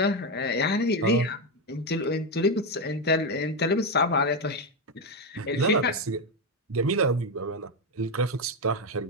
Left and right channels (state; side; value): normal; both; correlation 0.08